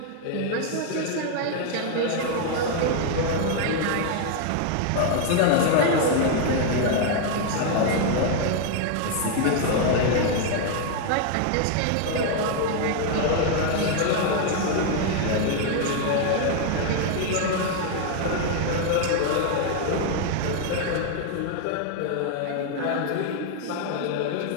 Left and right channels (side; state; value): both; different; correlation 0.00